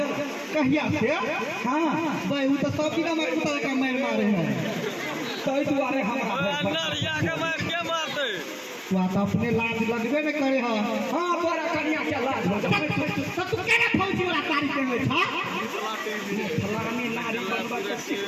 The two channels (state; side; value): identical; both; correlation 1.00